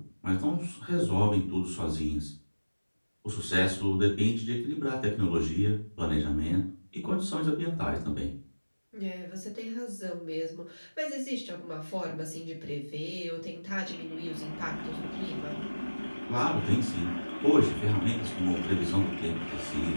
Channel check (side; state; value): both; inverted; correlation -1.00